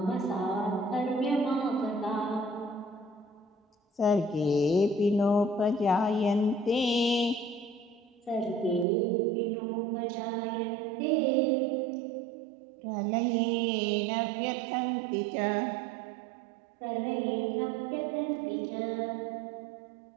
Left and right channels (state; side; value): drops out; left; at 8.8 s